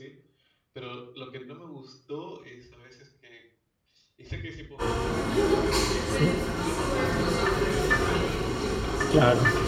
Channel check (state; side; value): identical; both; correlation 1.00